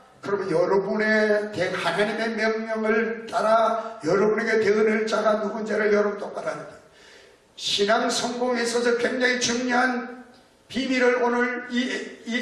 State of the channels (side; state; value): both; identical; correlation 1.00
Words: 그러면 여러분의 하나님의 명령을 따라 여러분에게 대언할 자가 누군지를 여러분 똑바로 알아야 돼요. 신앙 성공에 있어서 굉장히 중요한 비밀을 오늘